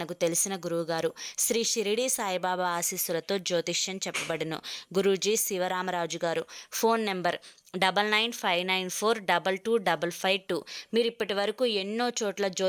తెలిసిన గురువుగారు. శ్రీ షిరిడి సాయిబాబా ఆశీస్సులతో జ్యోతిష్యం చెప్పబడును గురూజీ శివరామరాజు గారు. Phone number 9959422552. మీరు ఇప్పటి వరకు ఎన్నో చోట్ల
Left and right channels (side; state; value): both; identical; correlation 1.00